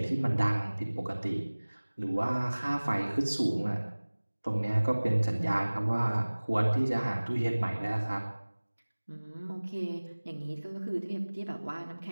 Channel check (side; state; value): both; inverted; correlation -1.00